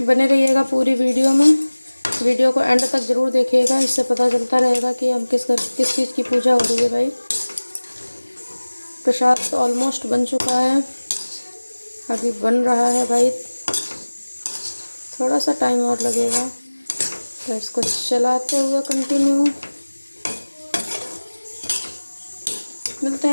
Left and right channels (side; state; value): both; inverted; correlation -1.00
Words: बने रहिएगा पूरी वीडियो में, वीडियो को एंड तक ज़रूर देखिएगा, इससे पता चलता रहेगा कि हम किस चीज़ की पूजा हो रही है भाई। प्रसाद तो ऑलमोस्ट बन चुका है, अभी बन रहा है भाई, थोड़ा सा टाइम और लगेगा। तो इसको चलाते हुए कंटिन्यू मिलते